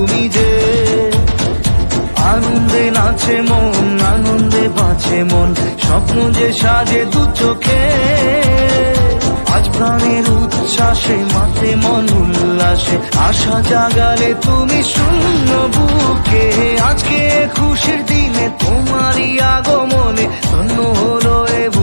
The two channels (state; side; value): inverted; both; correlation -1.00